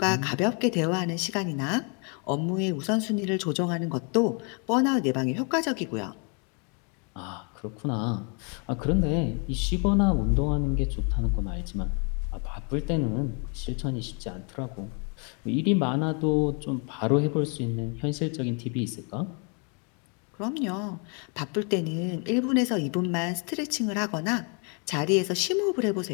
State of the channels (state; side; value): quieter; right; 36.7 dB